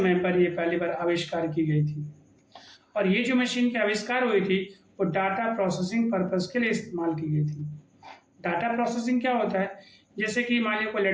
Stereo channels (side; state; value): both; identical; correlation 1.00